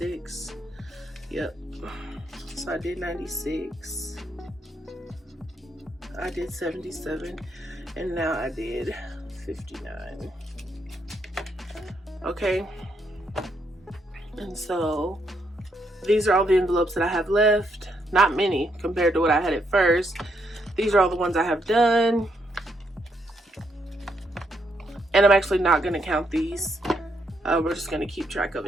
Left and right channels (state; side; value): normal; both; correlation 0.76